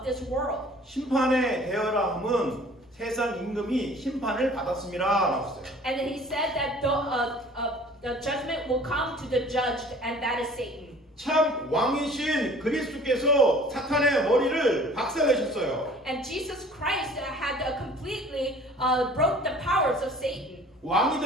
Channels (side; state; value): both; normal; correlation 0.49